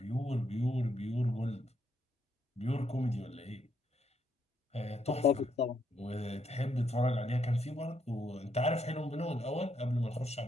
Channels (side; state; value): both; normal; correlation 0.75